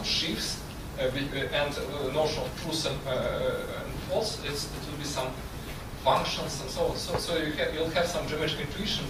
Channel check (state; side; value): identical; both; correlation 1.00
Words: sheaves, and the notion of truth and false, it will be some functions and so on. So you'll have some geometric intuition